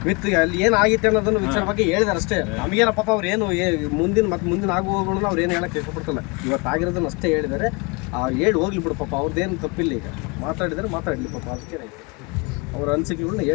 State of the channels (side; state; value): right; quieter; 28.9 dB